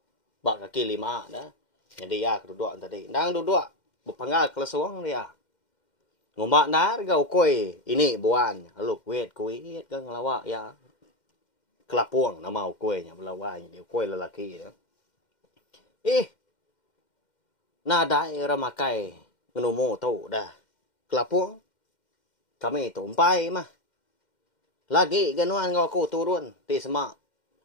bak kaki 5 dah jadi ya duduk tadi ndang duduk berpanggal kelasuang dia ngombak nar gau koi ini buan lalu kuit kan ngelawak ya kelapuang nama kuenya belawai dia koi lelaki ya nada era makai ngenomo tu dah kelapuang kami tu umpai mah lagi ganuan ngau ku turun ti semak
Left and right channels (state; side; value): late; right; 2.1 ms